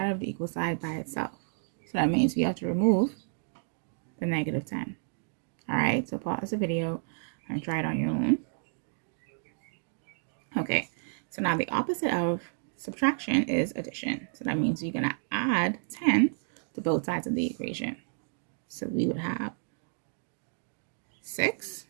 of the equal side by itself. So that means we have to remove the negative 10. All right, so pause the video and try it on your own. Okay, so now the opposite of subtraction is addition. So that means you're going to add 10 to both sides of the equation. So we would have 6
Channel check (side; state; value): left; silent; digital silence